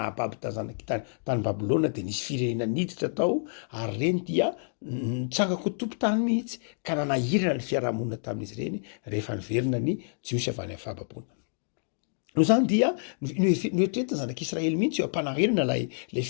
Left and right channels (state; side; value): silent; right; digital silence